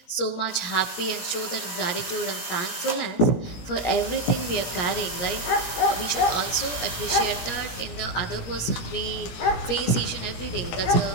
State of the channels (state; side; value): late; right; 17 ms